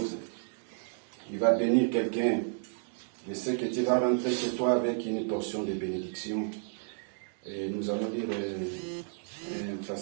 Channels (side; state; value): left; silent; digital silence